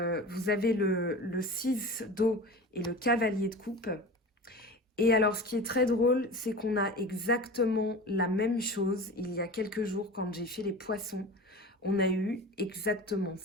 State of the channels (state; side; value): normal; both; correlation 0.34